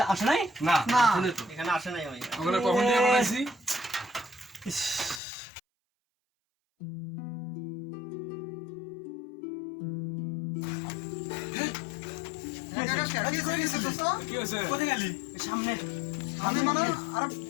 আসে নাই না না শুনে তো এখানে আসে নাই ভাই। আমরা কখন দিয়ে বানাইছি ইস, কি হয়েছে দোস্ত? কি হয়েছে কোথায় গেলি সামনে আমি মানে আরে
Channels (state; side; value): drops out; right; at 5.2 s